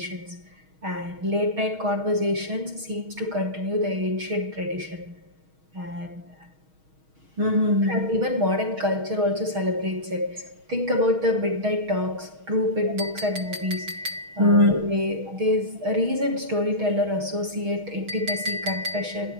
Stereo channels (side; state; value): left; late; 6.4 ms